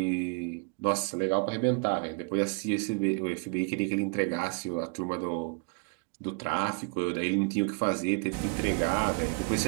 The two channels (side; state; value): left; quieter; 33.7 dB